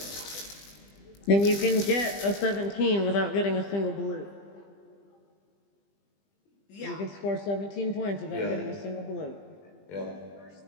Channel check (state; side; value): late; right; 20 ms